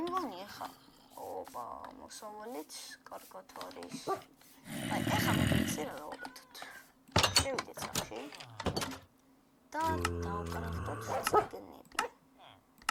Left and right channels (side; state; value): both; identical; correlation 1.00